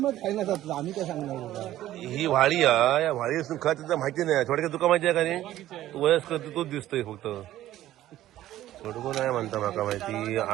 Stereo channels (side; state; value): left; quieter; 13.9 dB